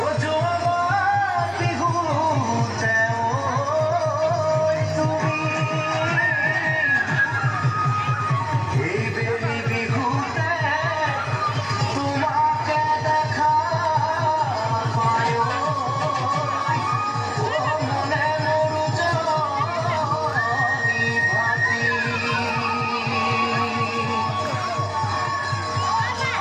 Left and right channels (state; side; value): identical; both; correlation 1.00